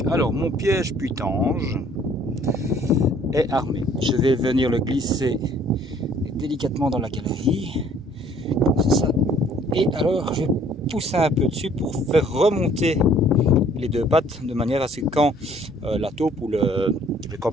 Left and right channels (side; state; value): both; normal; correlation 0.58